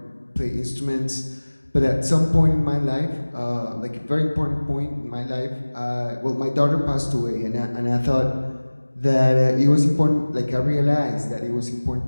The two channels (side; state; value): both; inverted; correlation -1.00